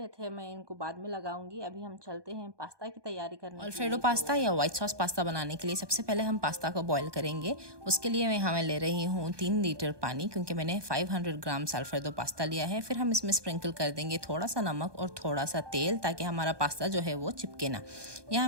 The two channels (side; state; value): left; late; 1.2 ms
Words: थे, मैं इनको बाद में लगाऊंगी। अभी हम चलते हैं पास्ता की तैयारी करने के अल्फ्रेडो लिए। पास्ता या व्हाइट सॉस पास्ता बनाने के लिए सबसे पहले हम पास्ता को बॉईल करेंगे। उसके लिए मैं यहाँ मैं ले रही हूँ 3 लीटर पानी, क्योंकि मैंने 500 ग्राम अल्फ्रेडो पास्ता लिया है। फिर हम इसमें स्प्रिंकल कर देंगे थोड़ा सा नमक और थोड़ा सा तेल, ताकि हमारा पास्ता जो है वो चिपके ना। यहाँ